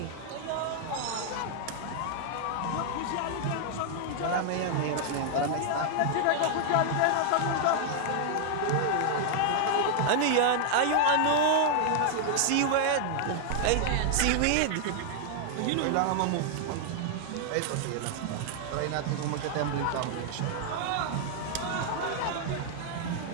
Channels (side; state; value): both; different; correlation 0.00